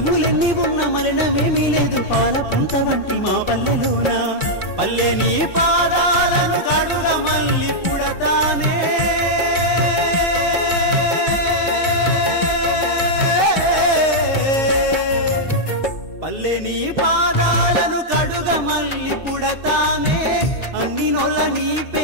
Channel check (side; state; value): right; late; 2.6 ms